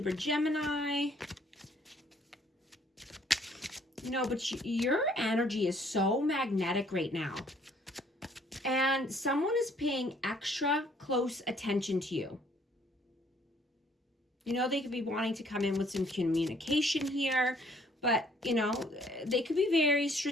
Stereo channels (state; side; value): normal; both; correlation 0.62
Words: Gemini. You know, but your energy is so magnetic right now. And someone is paying extra close attention to you. You know, they could be wanting to come in with some communication here. But, you know, they could be very